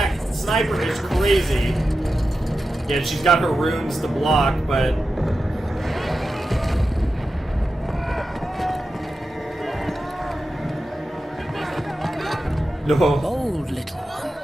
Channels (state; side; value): normal; both; correlation 0.91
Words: sniper is crazy. Yeah, she's got her runes to block, but... No. Bold little